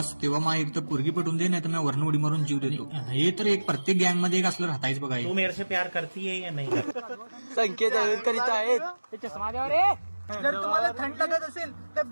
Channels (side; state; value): both; inverted; correlation -1.00